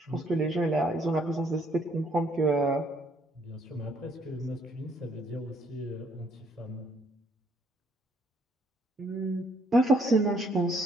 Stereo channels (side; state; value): both; normal; correlation 0.67